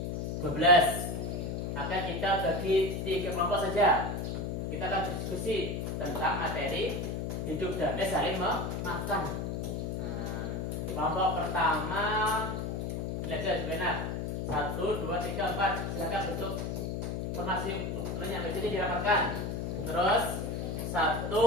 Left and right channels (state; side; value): noise; left; hum, 3 dB below the sound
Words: 12. Akan kita bagi 3 kelompok saja. Kita akan diskusi tentang materi hidup damai saling memaafkan. Kelompok pertama belajar benar. 1, 2, 3, 4. Silakan bentuk formasi yang ini dirapatkan. Terus 1,